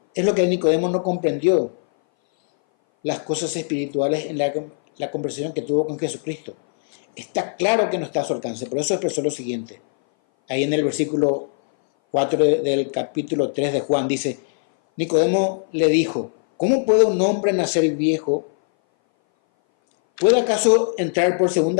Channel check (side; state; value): right; silent; 60 dB below the other